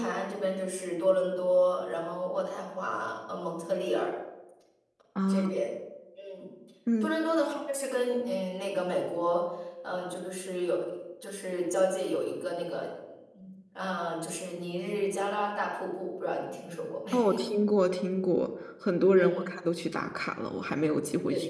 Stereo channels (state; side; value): identical; both; correlation 1.00